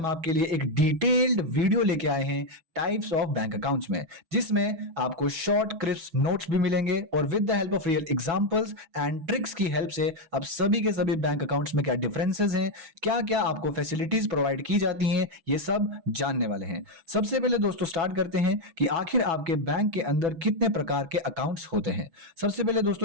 आपके लिए एक डिटेल्ड वीडियो लेके आए हैं टाइप्स ऑफ बैंक अकाउंट्स में, जिसमें आपको शॉर्ट क्रिस्प नोट्स भी मिलेंगे और with the help of real examples and tricks की हेल्प से अब सभी के सभी बैंक अकाउंट्स में क्या डिफरेंसेस हैं, क्या क्या आपको फैसिलिटीज प्रोवाइड की जाती हैं, ये सब जानने वाले हैं। सबसे पहले दोस्तों स्टार्ट करते हैं कि आखिर आपके बैंक के अंदर कितने प्रकार के अकाउंट्स होते हैं। सबसे पहले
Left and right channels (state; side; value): late; left; 6.1 ms